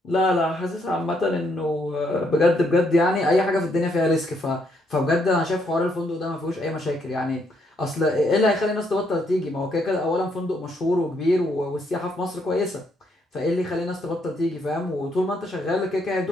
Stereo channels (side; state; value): both; normal; correlation 0.73